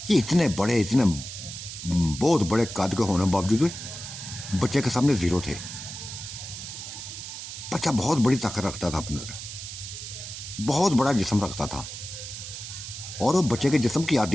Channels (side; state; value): right; noise; hiss, 9 dB below the sound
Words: ये इतने बहुत बड़े कद के होने बावजूद बच्चे के सामने जीरो थे। बच्चा बहुत बड़ी ताकत रखता था अपने अंदर, बहुत बड़ा जिस्म रखता था, और वो बच्चे के जिस्म की